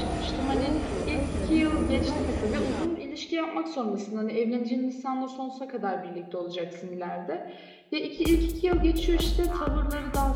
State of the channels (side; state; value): both; identical; correlation 1.00